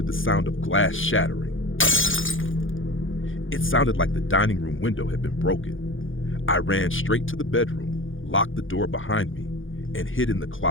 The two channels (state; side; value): late; right; 0.58 ms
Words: the sound of glass shattering. It sounded like the dining room window had been broken. I ran straight to the bedroom, locked the door behind me, and hid in the